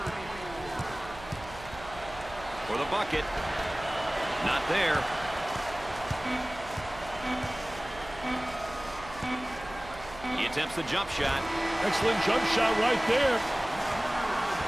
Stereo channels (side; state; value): right; noise; hum, 16 dB below the sound